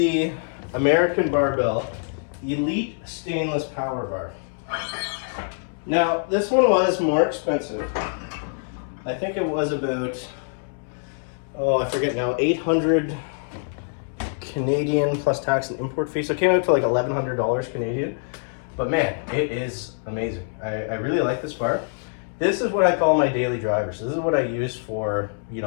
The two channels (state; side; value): silent; right; 62 dB below the other